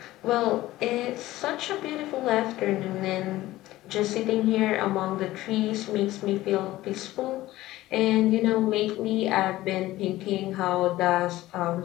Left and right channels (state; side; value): quieter; right; 16.5 dB